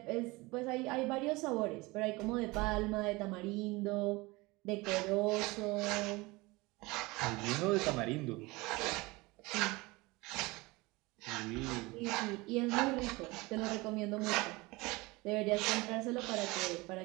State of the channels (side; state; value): left; quieter; 23.0 dB